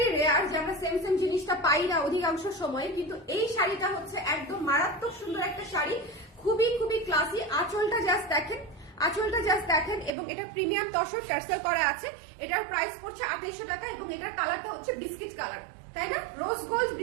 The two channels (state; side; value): drops out; left; at 10.1 s